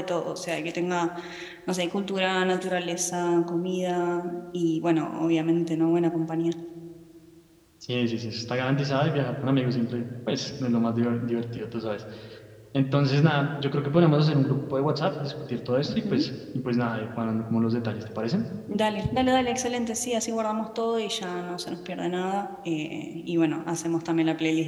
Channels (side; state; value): both; identical; correlation 1.00